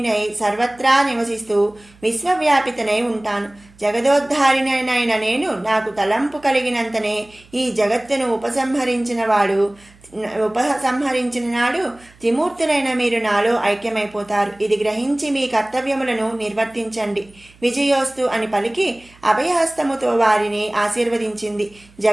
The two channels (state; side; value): noise; right; hum, 27 dB below the sound